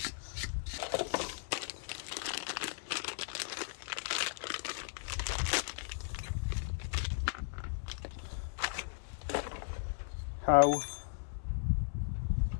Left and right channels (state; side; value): silent; right; 53 dB below the other